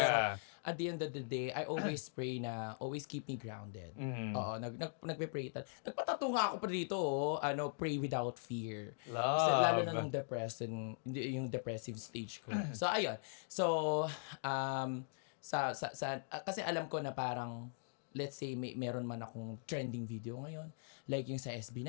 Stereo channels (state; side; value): silent; right; digital silence